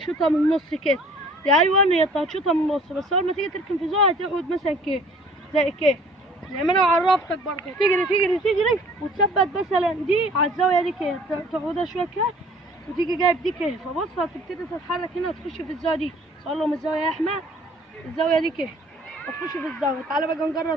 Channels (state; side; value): normal; both; correlation 0.53